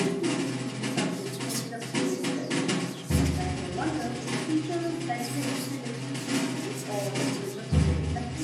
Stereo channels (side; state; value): both; identical; correlation 1.00